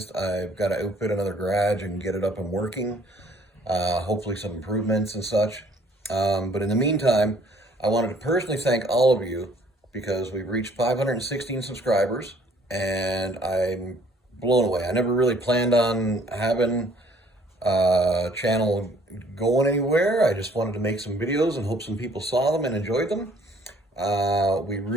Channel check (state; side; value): normal; both; correlation 0.60